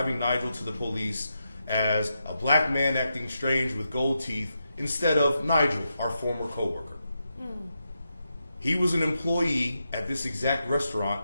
Nigel to the police as a black man acting strange with gold teeth instead of Nigel, our former coworker? He was an employee at this exact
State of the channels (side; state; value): both; inverted; correlation -0.85